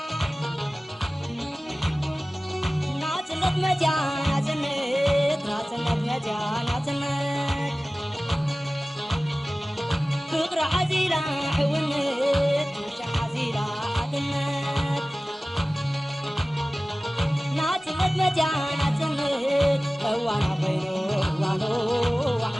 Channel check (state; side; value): normal; both; correlation 0.97